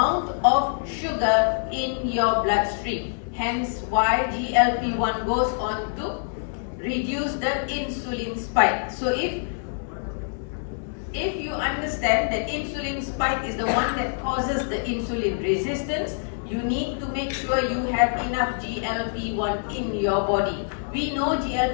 of sugar in your bloodstream. Hence why GLP-1 goes on to reduce the insulin spike. So if you understand that insulin spike is the one that causes the insulin resistance, you need to make sure you have enough GLP-1 in your body. We know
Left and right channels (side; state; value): right; silent; digital silence